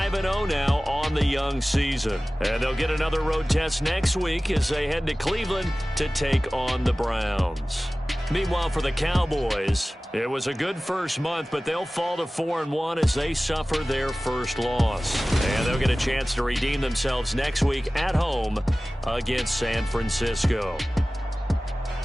now on the young season. And they'll get another road test next week as they head to Cleveland to take on the Browns. Meanwhile, for the Cowboys, it was a good first month, but they'll fall to 4-1 as they suffer their first loss. And they'll get a chance to redeem themselves next week at home against San Francisco.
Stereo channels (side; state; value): both; normal; correlation 0.97